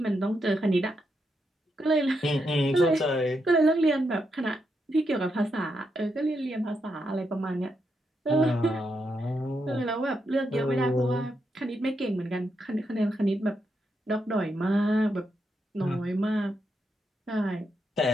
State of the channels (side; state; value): both; normal; correlation 0.82